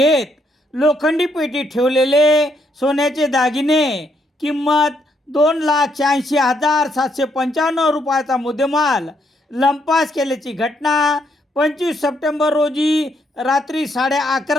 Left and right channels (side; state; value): both; normal; correlation 0.74